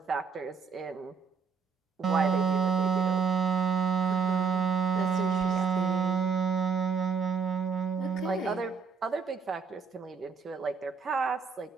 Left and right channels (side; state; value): left; quieter; 5.6 dB